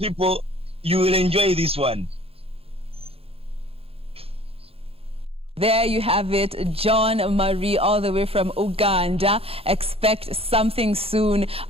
you will enjoy this one. There you have it, John Marie, all the way from Uganda. Expect something soon,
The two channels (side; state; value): left; late; 0.28 ms